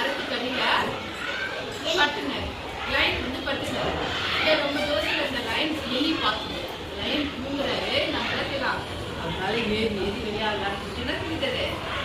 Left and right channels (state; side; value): identical; both; correlation 1.00